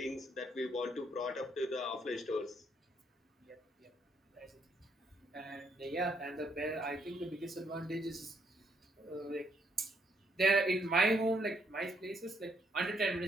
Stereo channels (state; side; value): normal; both; correlation 0.72